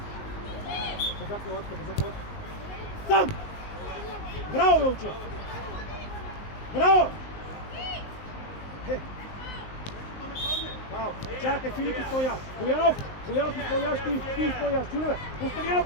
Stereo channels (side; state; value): right; late; 19 ms